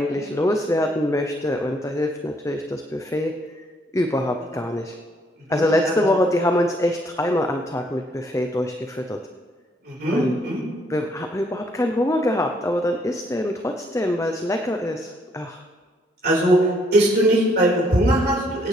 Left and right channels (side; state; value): both; normal; correlation 0.68